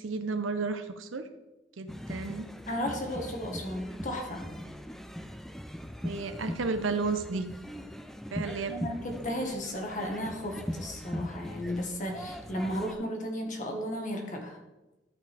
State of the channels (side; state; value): both; normal; correlation 0.45